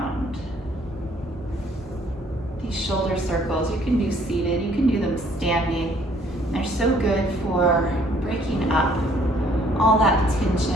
These shoulder circles, you can do seated, you can do them standing. They're so good for breaking up all that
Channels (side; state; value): both; normal; correlation 0.62